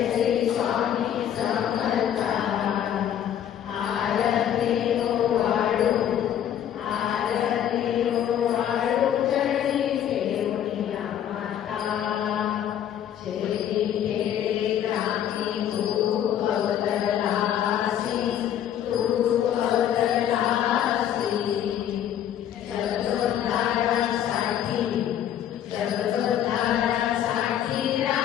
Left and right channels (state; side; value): quieter; right; 10.3 dB